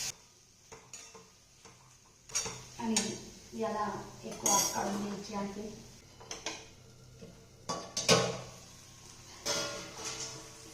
आणि याला एक वाफ काढून घ्यायची आहे.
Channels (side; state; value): both; identical; correlation 1.00